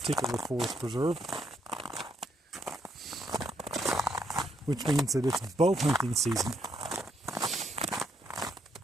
forest preserve, which means that it's bow hunting season.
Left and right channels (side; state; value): both; normal; correlation 0.75